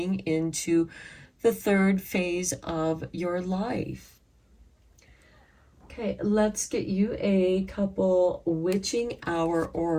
into the third phase of your life. Okay, let's get you a couple Witching Hour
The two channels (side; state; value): both; identical; correlation 1.00